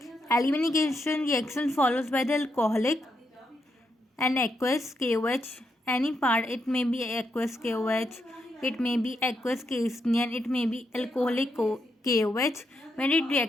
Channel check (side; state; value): both; normal; correlation 0.81